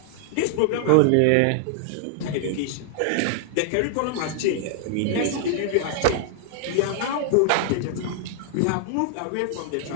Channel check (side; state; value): both; different; correlation 0.00